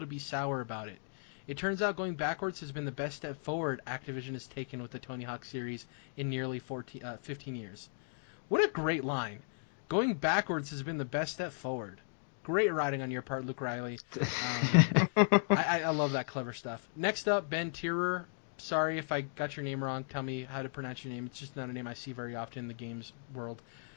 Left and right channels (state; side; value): silent; right; digital silence